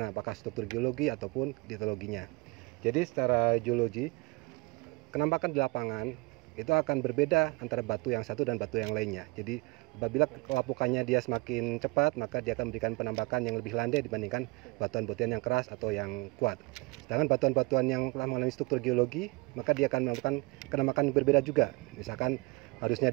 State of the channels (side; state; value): left; quieter; 25.8 dB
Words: apakah struktur geologi ataupun litologinya. Jadi secara geologi, penampakan di lapangan itu akan berbeda antara batu yang satu dan batu yang lainnya. Jadi apabila kelapukannya dia semakin cepat, maka dia akan memberikan penampakan yang lebih landai dibandingkan batuan-batuan yang keras atau yang kuat. Sedangkan batuan-batuan yang telah mengalami struktur geologi, maka dia akan melakukan penampakan yang berbeda juga. Misalkan harusnya